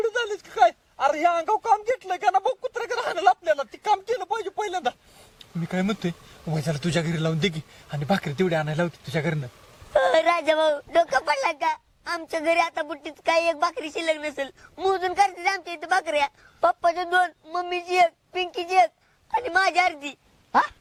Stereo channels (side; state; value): both; identical; correlation 1.00